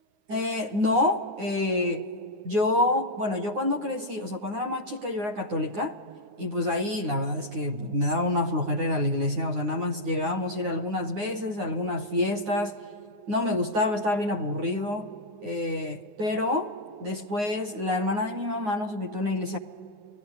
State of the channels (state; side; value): late; left; 9.6 ms